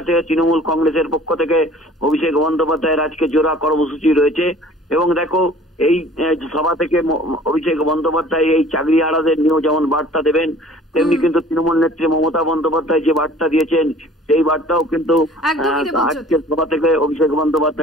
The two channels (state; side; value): normal; both; correlation 0.50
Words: থেকে তৃণমূল কংগ্রেসের পক্ষ থেকে অভিষেক বন্দ্যোপাধ্যায়ের আজকে জোড়া কর্মসূচি রয়েছে এবং দেখো এই সভা থেকে অভিষেক বন্দ্যোপাধ্যায় এই চাকরি হারাদের নিয়েও যেমন বার্তা দেবেন, তেমনি কিন্তু তৃণমূল নেত্রী মমতা বন্দ্যোপাধ্যায় যে বার্তা দিয়েছেন সেই বার্তাও কিন্তু আজকের সভা থেকে অভিষেক